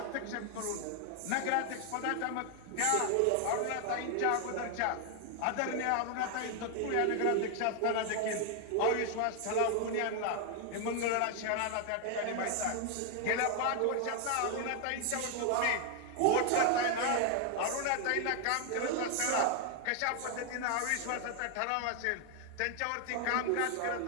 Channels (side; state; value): both; different; correlation 0.00